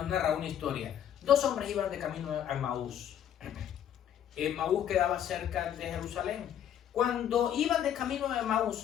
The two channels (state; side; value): quieter; right; 9.9 dB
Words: una historia. 2 hombres iban de camino a Emaús. Emaús quedaba cerca de Jerusalén. Cuando iban de camino a